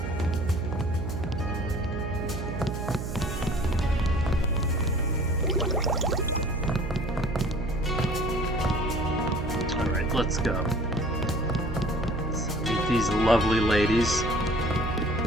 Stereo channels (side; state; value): right; noise; hum, 5 dB below the sound